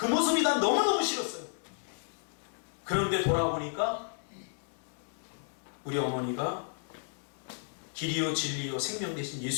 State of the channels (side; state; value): right; silent; 56 dB below the other